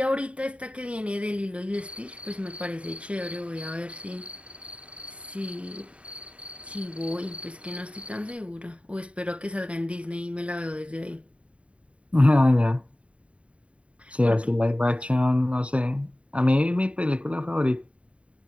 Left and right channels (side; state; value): left; late; 0.063 ms